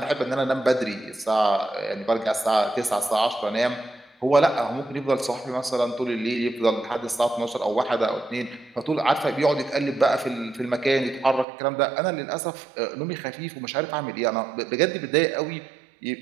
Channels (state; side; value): drops out; left; at 11.5 s